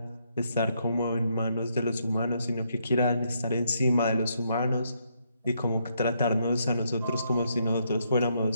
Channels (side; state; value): both; inverted; correlation -0.75